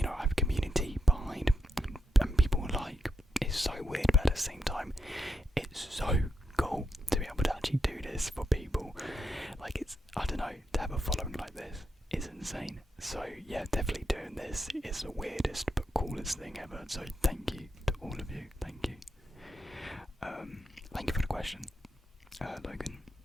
I have a community behind and people like. It's so weird, but at the same time, it's so cool to be able to actually do this for people. Like, I don't know, to have a following like this is insane. So yeah, definitely doing this is the weirdest but coolest thing ever. So thank you to all of you. Thank you. Thank you for the question, Logan.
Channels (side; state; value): both; normal; correlation 0.83